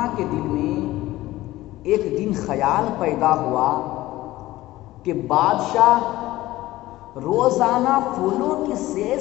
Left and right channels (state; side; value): quieter; right; 16.8 dB